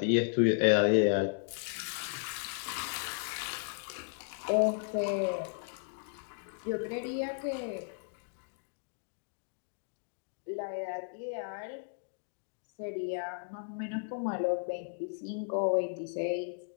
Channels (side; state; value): right; silent; digital silence